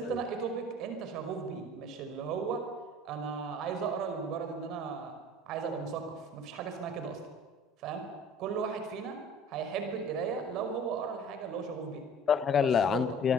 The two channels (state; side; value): normal; both; correlation 0.47